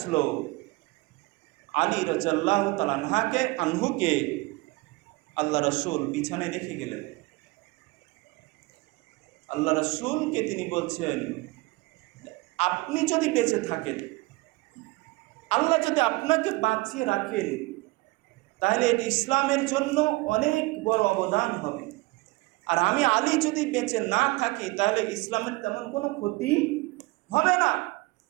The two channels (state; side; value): quieter; left; 23.2 dB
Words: আলী রাদিয়াল্লাহু তাআলা আনহুকে আল্লাহ রাসূল বিছানায় রেখে গেলেন। আল্লাহ রাসূলকে তিনি বলছেন, আপনি যদি বেঁচে থাকেন, আল্লাহ যদি আপনাকে বাঁচিয়ে রাখেন, তাহলে এটি ইসলামের জন্য অনেক বড় অবদান হবে। আর আমি আলী যদি বেঁচে না থাকি, তাহলে ইসলামের তেমন কোনো ক্ষতি হবে না।